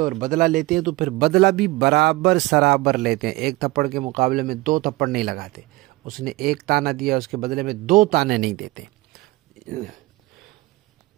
بدلہ لیتے ہیں تو پھر بدلہ بھی برابر سرابر لیتے ہیں. ایک تھپڑ کے مقابلے میں 2 تھپڑ نہیں لگاتے. اس نے ایک تانا دیا، اس کے بدلے میں 2 تانے نہیں دیتے.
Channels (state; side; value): quieter; left; 20.5 dB